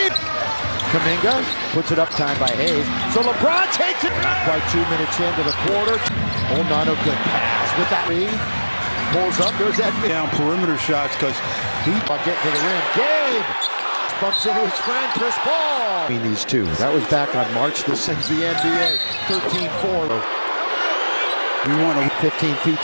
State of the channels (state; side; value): inverted; both; correlation -1.00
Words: Kuminga puts it up, time by Hayes. So LeBron takes it. Not quite 2 minutes into the quarter. Oh, not a good pass with that. Reed pulls up. There's that down perimeter shots because he getting to the rim. Gabe bumps into his friend Chris Paul. Between these two, that was back on March. This is the NBA. 13-4. We want 15 feet